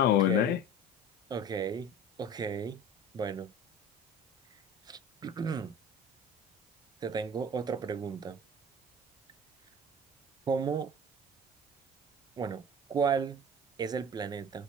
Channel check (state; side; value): normal; both; correlation 0.37